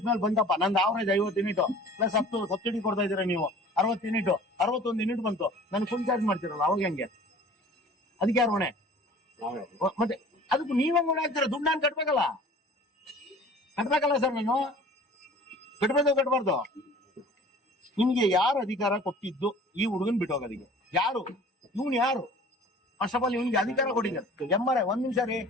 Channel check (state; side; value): normal; both; correlation 0.46